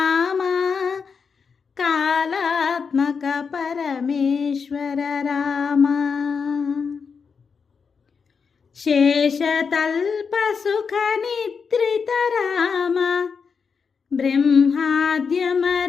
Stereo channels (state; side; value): quieter; right; 5.7 dB